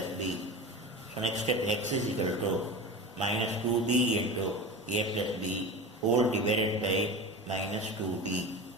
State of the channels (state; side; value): normal; both; correlation 0.29